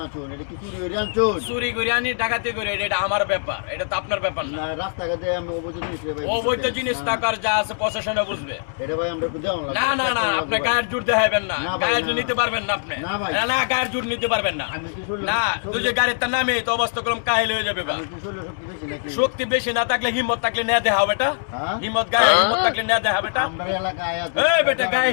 আনছুন, এটা কি চুরি করে আনছুন? চুরি করে আনি, ডাকাতি করে, এটা আমার ব্যাপার, এটা তো আপনার ব্যাপার না। না রাস্তাঘাটে আমি অবৈধ জিনিস ভাই, অবৈধ জিনিস টাকার যা আছে প্রশাসনে বুঝবে। এটা ভাই আমরা একটু দেওয়া লাগবে। না না না, আপনি গায়ের জোর দেখাবেন না, না ভাই, গায়ের না, জোর না। নিতে পারবেন না আপনি। না ভাই। না গায়ের জোর নিতে পারবেন না। আমি কি শুনলাম? না, তুই যে গাড়ির তার নামে তো অবস্থা করলাম কাহিল হয়ে যাবে বা। আমি কি শুনলাম শক্তি বেশি নাকি? শক্তি বেশি না থাকলে হিম্মত থাকলে নেয়া দেখা বেটা। হ্যাঁ? হিম্মত গায়ে হিম্মত থাকলে নেয়া দেখা বেটা। আমরা এলাকায় আছে। এই বেটা গায়ে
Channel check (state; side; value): silent; right; digital silence